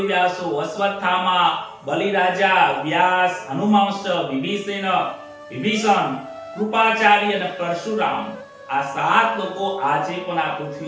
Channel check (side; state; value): both; identical; correlation 1.00